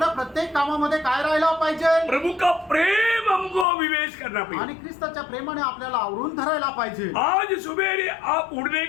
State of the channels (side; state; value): right; drops out; at 3.7 s